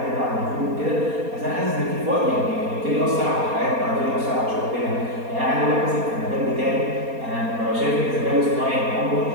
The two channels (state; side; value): late; left; 4.2 ms